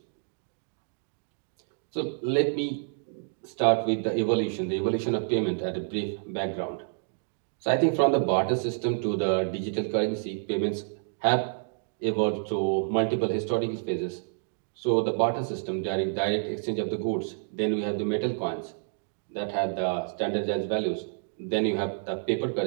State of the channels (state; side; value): silent; left; digital silence